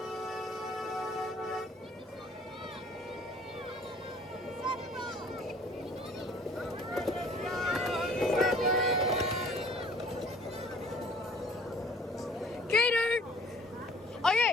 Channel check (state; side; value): normal; both; correlation 0.54